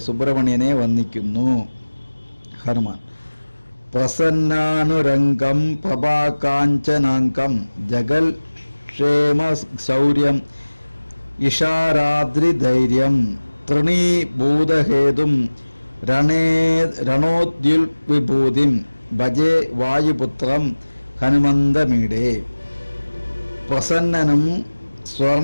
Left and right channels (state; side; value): inverted; both; correlation -1.00